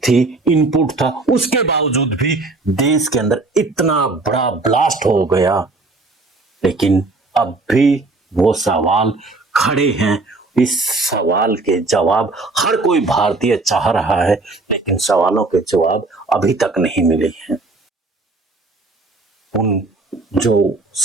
इनपुट था, उसके बावजूद भी देश के अंदर इतना बड़ा ब्लास्ट हो गया। लेकिन अब भी वो सवाल खड़े हैं। इस सवाल के जवाब हर कोई भारतीय चाह रहा है, लेकिन सवालों के जवाब अभी तक नहीं मिले हैं। उन जो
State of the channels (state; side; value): quieter; left; 3.4 dB